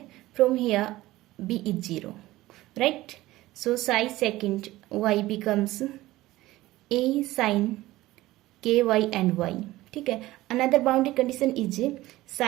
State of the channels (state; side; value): quieter; left; 17.3 dB